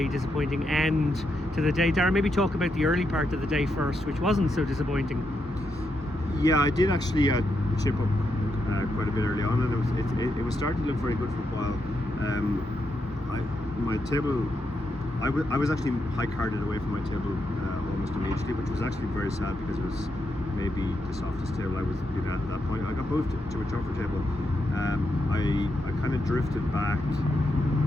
disappointing end to the day. Dara, maybe talk about the early part of the day first, which wasn't so disappointing. Yeah, I did actually chip up quite a bit early on, and it was starting to look very good for a while. My table, I was actually high carded away from my table almost immediately, which was actually very sad because it was maybe the softest table I was been at that point. I got moved to a tougher table. I kind of drifted back,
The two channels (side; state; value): both; normal; correlation 0.82